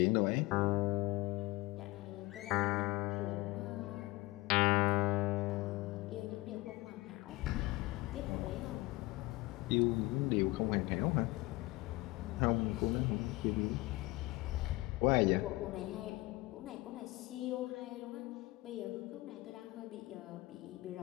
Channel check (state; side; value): quieter; right; 20.9 dB